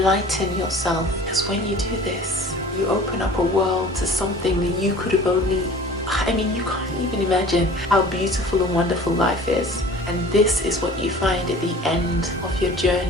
yourself. Because when you do this, You open up a world to something that you could have only, I mean, you can't even imagine how beautiful and wonderful life is. And this is what you find at the end of your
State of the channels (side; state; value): both; normal; correlation 0.44